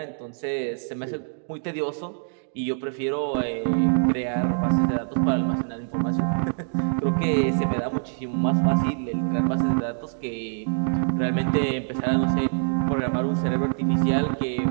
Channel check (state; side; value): silent; left; digital silence